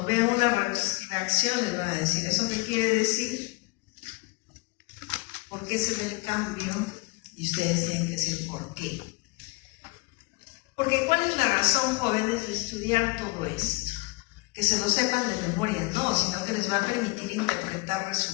vean una reacción les van a decir, ¿eso qué quiere decir? ¿Por qué se ve el cambio? Y ustedes tienen que decir ¿por qué? Porque ¿cuál es la razón, jóvenes, de estudiar todo esto? Que se lo sepan de memoria, no, sino que les va a permitir interpretar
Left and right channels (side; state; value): right; quieter; 24.9 dB